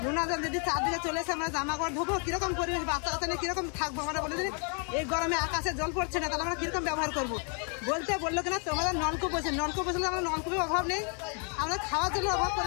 নোনা জল যদি 4 দিকে চলে এসে আমরা জামা কাপড় ধোবো, কিরকম পরিবেশ, বাচ্চা কাচ্চা নিয়ে কিরকম থাকবো? আমরা বলে দিন এই গরমে আকাশে জল পড়ছে না, তাহলে আমরা কিরকম ব্যবহার করবো? বললো কিনা তোমাদের নলকূপ বসে, নলকূপ বসলে আমরা নলকূপের অভাব নেই, আমরা খাওয়ার জন্য অভাব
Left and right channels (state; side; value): quieter; right; 39.7 dB